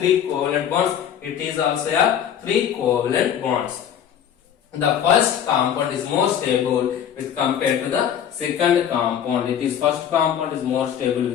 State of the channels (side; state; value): right; quieter; 9.2 dB